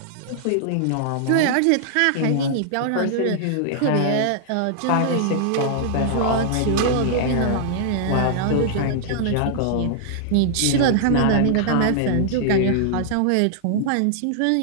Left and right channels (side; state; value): both; different; correlation -0.01